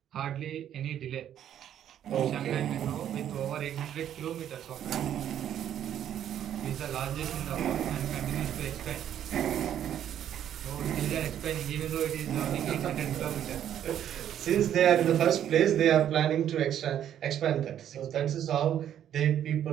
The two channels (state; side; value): quieter; left; 10.3 dB